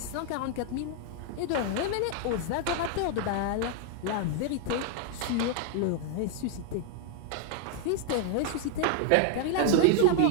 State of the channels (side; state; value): both; different; correlation 0.00